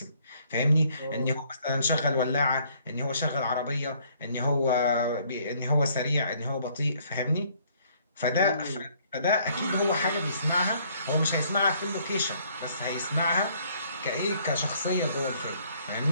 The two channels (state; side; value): inverted; both; correlation -0.64